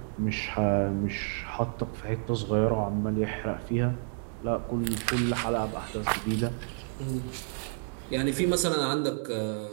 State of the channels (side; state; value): left; silent; digital silence